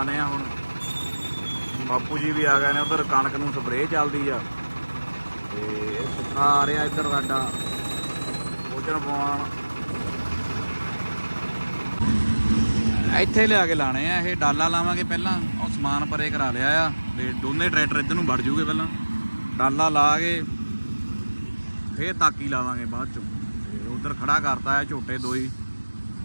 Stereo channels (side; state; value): both; inverted; correlation -1.00